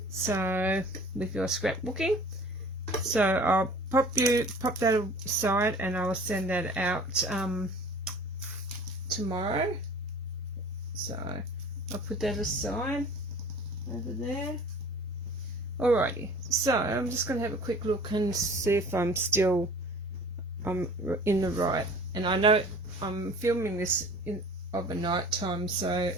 So with your scrapbooking, so I'll pop that aside, and I will send that out tomorrow. So I'll put that aside over there. Alrighty, so I'm just going to have a quick look and see if I'm in the right. And I know I'm filming this of a night time, so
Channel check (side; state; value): both; normal; correlation 0.46